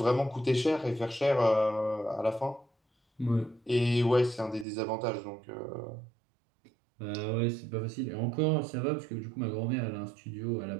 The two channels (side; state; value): left; drops out; at 4.7 s